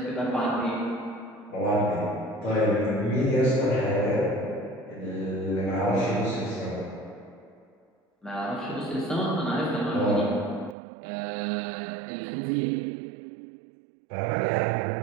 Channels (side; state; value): left; drops out; at 10.8 s